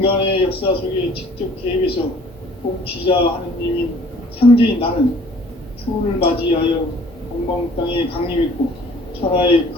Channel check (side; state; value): both; normal; correlation 0.54